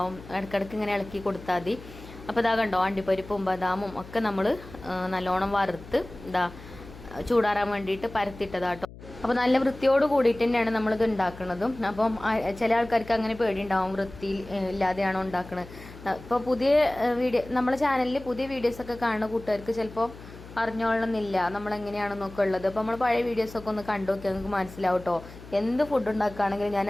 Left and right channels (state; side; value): noise; left; hum, 17 dB below the sound